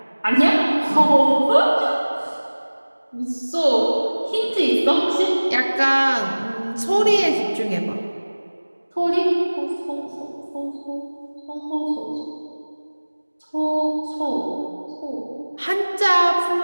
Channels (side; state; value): both; inverted; correlation -1.00